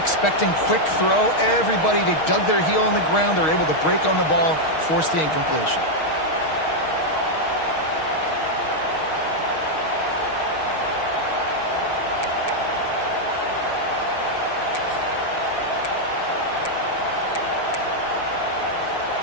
quick throw. Everybody, they dug their heel on the ground. They're able to break on the ball, force the incompletion.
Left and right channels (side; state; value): right; late; 6.4 ms